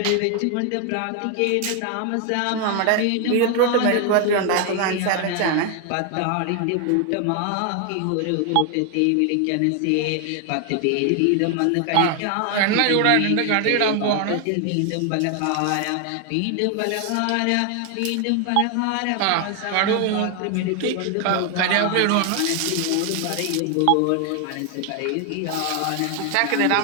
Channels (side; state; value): both; different; correlation 0.00